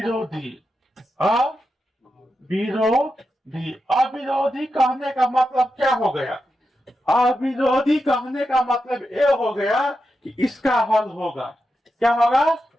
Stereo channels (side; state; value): both; normal; correlation 0.88